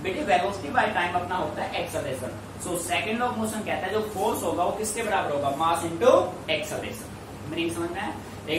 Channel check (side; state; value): both; identical; correlation 1.00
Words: बेटे वेलोसिटी बाय टाइम अपना होता है acceleration. So second law of motion कहता है जो फोर्स होगा वो किसके बराबर होगा, मास इनटू एक्सेलरेशन। मीनिंग समझ में है?